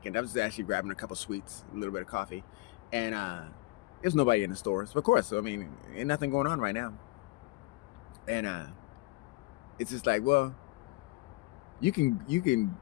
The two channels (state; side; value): quieter; right; 22.2 dB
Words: I was actually grabbing a couple sweets, a little bit of coffee, and there's nobody in the stores. Of course, ain't nothing going on right now. And it's just like, well, you can